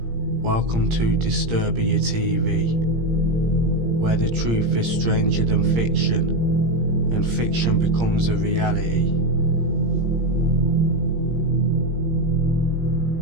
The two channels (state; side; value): late; left; 17 ms